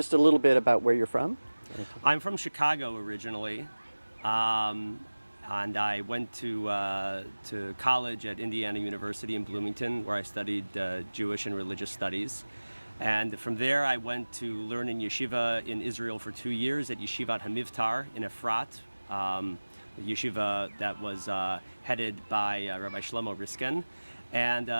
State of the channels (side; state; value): both; inverted; correlation -1.00